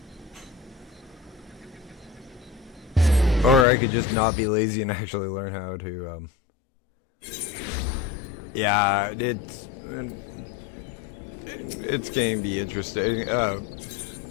to him. Or I could just not be lazy and actually learn how to, yeah, it's going to be interesting.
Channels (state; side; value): drops out; right; at 3.7 s